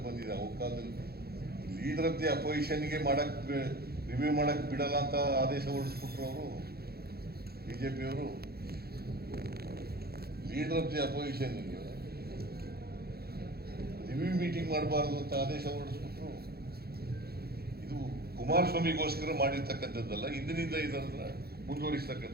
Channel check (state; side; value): late; left; 0.46 ms